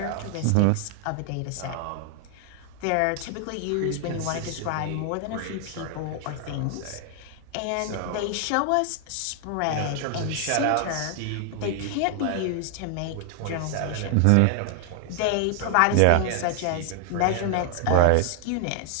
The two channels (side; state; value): both; different; correlation 0.00